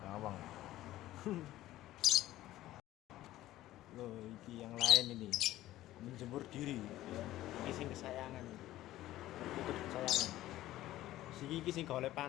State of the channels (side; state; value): right; quieter; 15.0 dB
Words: Bawang. Loh, iki yang lain ini. Menjemur diri. Iki sing kesayangan. Perkutut kesayangan. Siki iki sing golek